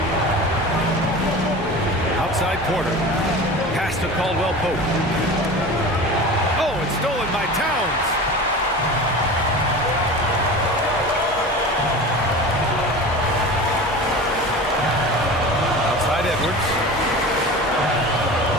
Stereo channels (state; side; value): normal; both; correlation 0.34